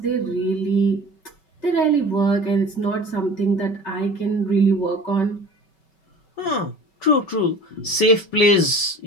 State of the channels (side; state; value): right; late; 5.3 ms